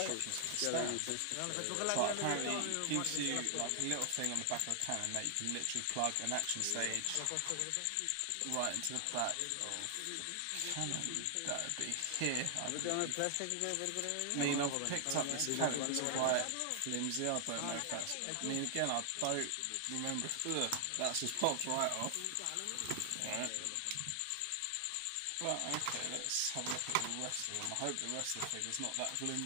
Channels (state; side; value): different; both; correlation 0.00